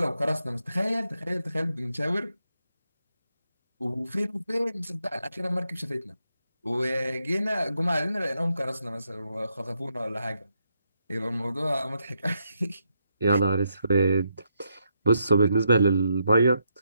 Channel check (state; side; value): inverted; both; correlation -0.80